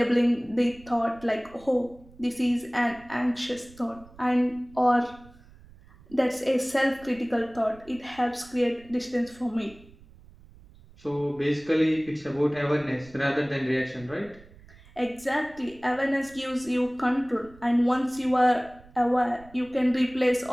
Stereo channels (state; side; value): noise; right; rumble, 24 dB below the sound